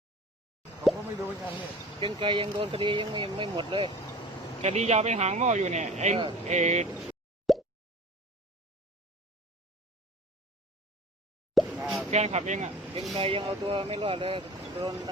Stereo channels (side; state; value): both; normal; correlation 0.39